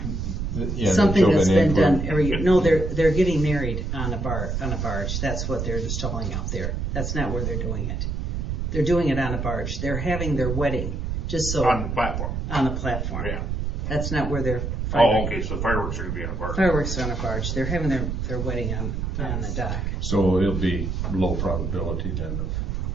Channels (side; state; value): right; noise; rumble, 2 dB below the sound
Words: yeah, something they're that's building been in done every year. No, they're getting married on a barge. That's what they're installing out there. That's not where they're doing it. They're doing it on a barge. They're having their wedding, just so, On the platform. on a platform. Yeah. That's not where they're Oh, firing. okay, so fireworks are gonna be on a barge. Fireworks are on a barge. They're having their wedding on the dock. So it'll be low probability then